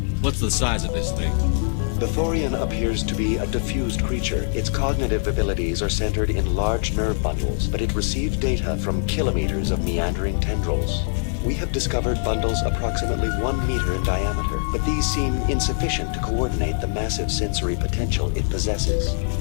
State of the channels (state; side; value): silent; right; digital silence